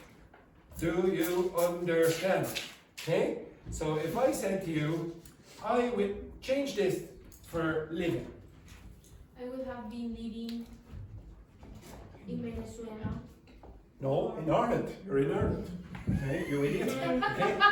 Do you understand? Okay? So if I said to you, I will change this for living. I would have been living in Venezuela. No, in Ireland. You're in Ireland. Okay, you idiot. Okay.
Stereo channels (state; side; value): identical; both; correlation 1.00